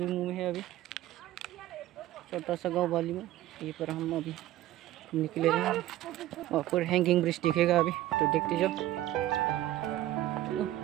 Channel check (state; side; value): quieter; left; 14.7 dB